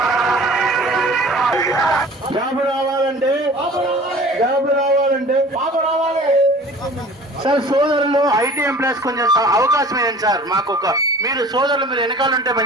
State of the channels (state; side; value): normal; both; correlation 0.45